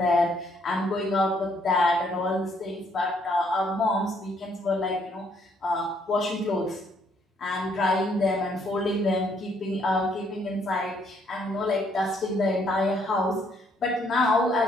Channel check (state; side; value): normal; both; correlation 0.69